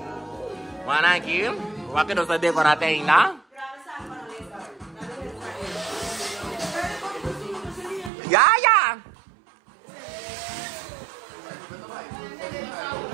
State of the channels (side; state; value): left; drops out; at 8.1 s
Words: Mana aqui? Waktu dosa decorate ainda. Ya.